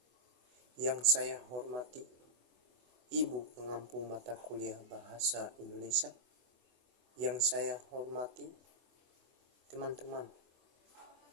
yang saya hormati Ibu pengampu mata kuliah Bahasa Indonesia, yang saya hormati teman-teman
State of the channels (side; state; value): left; late; 24 ms